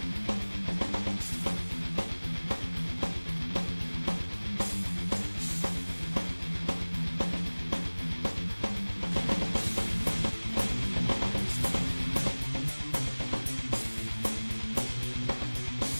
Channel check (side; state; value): both; inverted; correlation -1.00